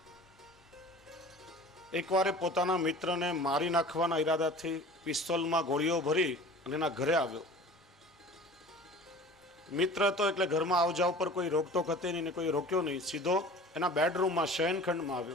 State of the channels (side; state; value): both; normal; correlation 0.42